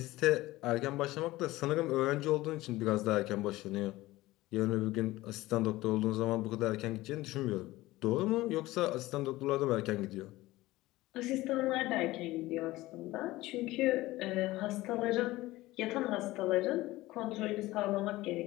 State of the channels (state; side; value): quieter; right; 18.1 dB